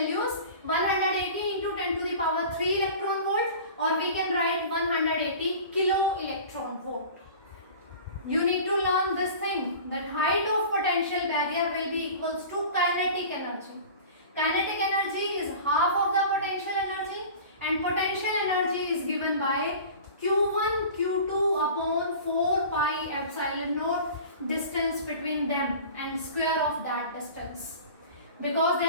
180 into 10 to the power 3 electron volt, or we can write 180 kilo electron volt. You need to learn this thing, that height of potential barrier will be equals to kinetic energy. Kinetic energy is half of the potential energy, and potential energy is given by Q1 Q2 upon 4 pi epsilon naught, distance between them and square of that distance. Because they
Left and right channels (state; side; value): inverted; both; correlation -0.39